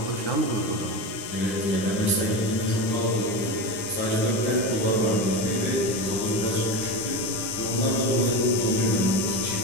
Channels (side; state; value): right; late; 10 ms